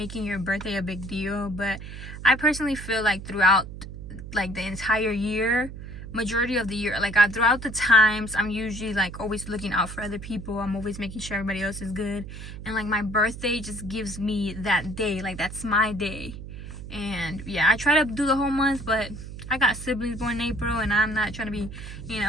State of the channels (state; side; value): noise; right; hum, 11 dB below the sound